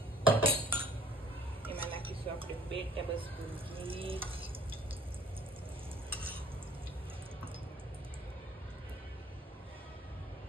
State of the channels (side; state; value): both; normal; correlation 0.55